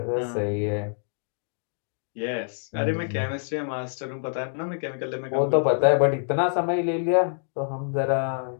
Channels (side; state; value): right; silent; digital silence